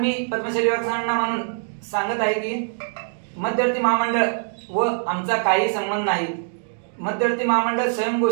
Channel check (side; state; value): left; silent; digital silence